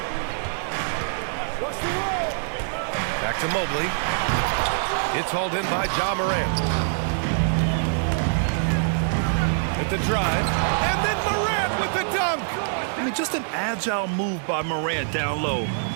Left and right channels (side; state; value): left; silent; digital silence